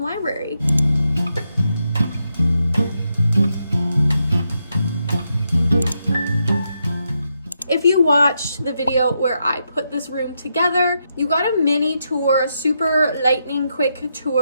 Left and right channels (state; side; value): inverted; both; correlation -0.83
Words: library. If you watched the video where I put this room together, you got a mini tour, a super lightning quick